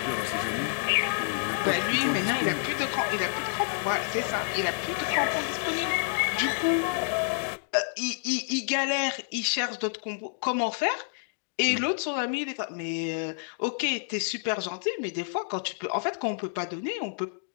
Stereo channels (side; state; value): right; silent; digital silence